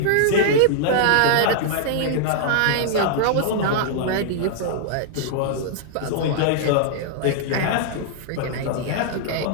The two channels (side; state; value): both; different; correlation -0.01